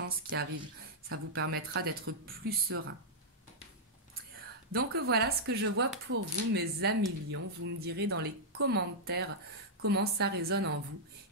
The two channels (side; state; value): both; normal; correlation -0.07